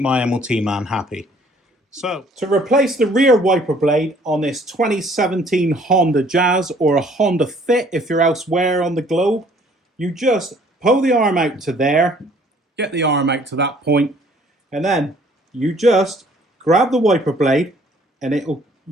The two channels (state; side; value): normal; both; correlation 0.58